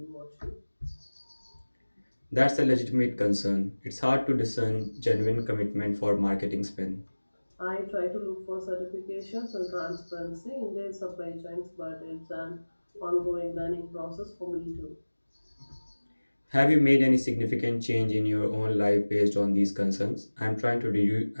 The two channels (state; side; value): inverted; both; correlation -1.00